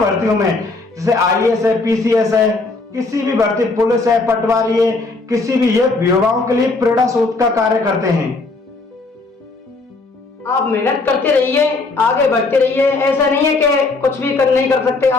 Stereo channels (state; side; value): quieter; right; 3.5 dB